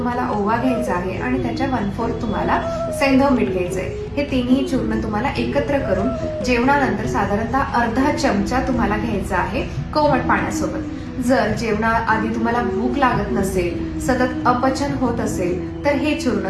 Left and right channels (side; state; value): both; identical; correlation 1.00